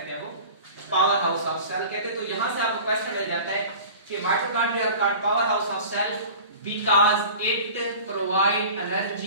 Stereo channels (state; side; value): inverted; both; correlation -0.39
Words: हैं, वो पावर हाउस ऑफ सेल कहते हैं। तो यहां से आपको क्वेश्चन मिल जाता है कि mitochondria called power house of cell because it provide